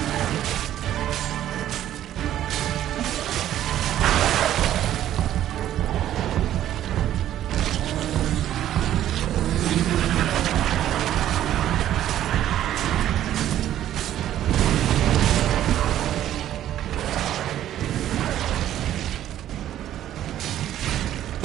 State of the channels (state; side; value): quieter; left; 12.0 dB